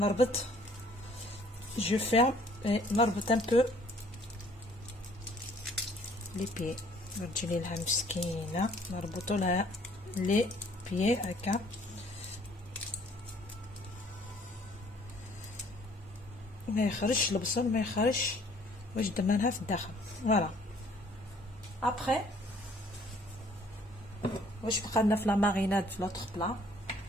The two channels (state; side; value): normal; both; correlation 0.59